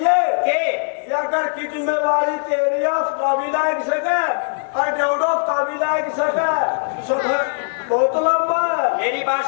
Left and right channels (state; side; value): silent; right; digital silence